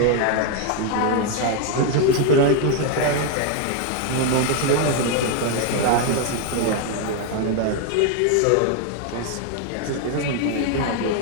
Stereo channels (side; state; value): both; different; correlation 0.01